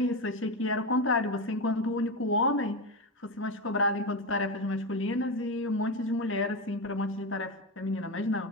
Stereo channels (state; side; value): normal; both; correlation 0.15